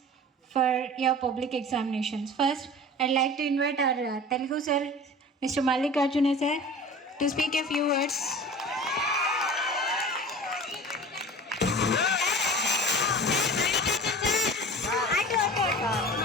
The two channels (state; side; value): normal; both; correlation 0.39